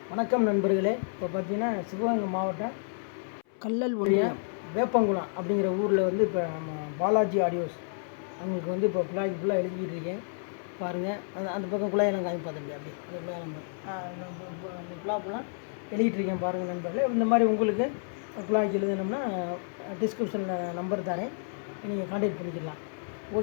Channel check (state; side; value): silent; right; 57 dB below the other